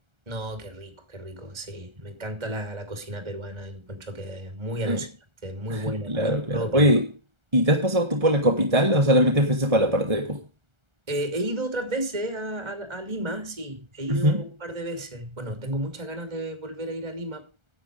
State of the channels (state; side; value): late; left; 1.3 ms